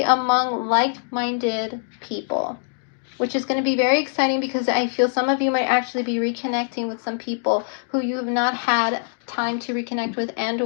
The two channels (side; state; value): right; silent; 63 dB below the other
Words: among like-minded people, which is going to be very exciting because I feel some of you might actually be reconnecting with some people who you have not had time to reconnect with and